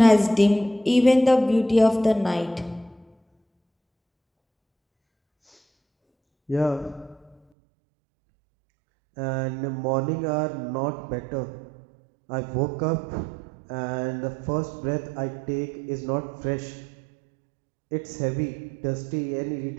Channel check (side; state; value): left; drops out; at 7.4 s